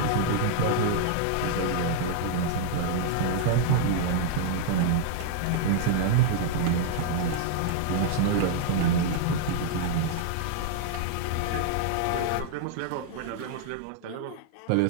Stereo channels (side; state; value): both; different; correlation -0.01